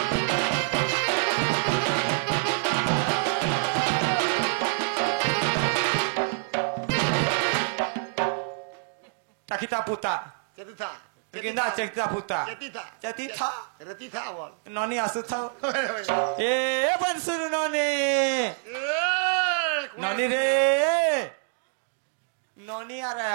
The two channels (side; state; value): left; silent; digital silence